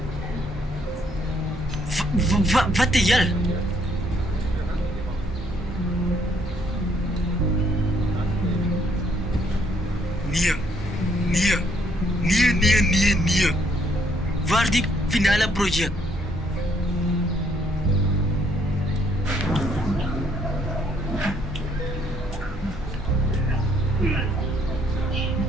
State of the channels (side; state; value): both; normal; correlation 0.68